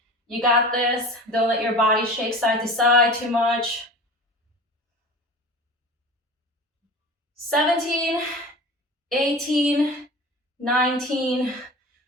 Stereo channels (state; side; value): normal; both; correlation 0.36